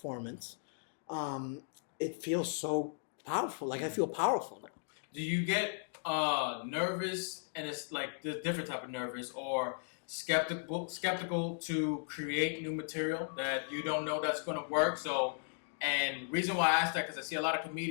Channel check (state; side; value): silent; right; digital silence